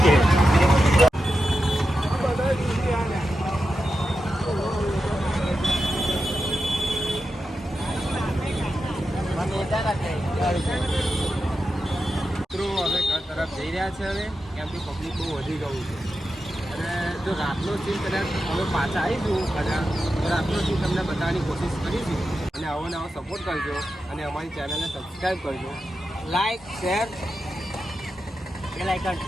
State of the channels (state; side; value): normal; both; correlation 0.90